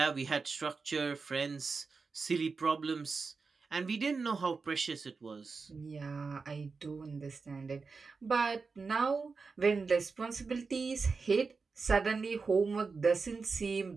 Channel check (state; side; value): quieter; left; 4.6 dB